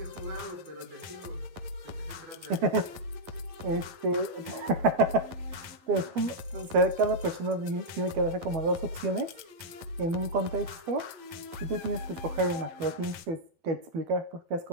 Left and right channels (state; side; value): late; left; 11 ms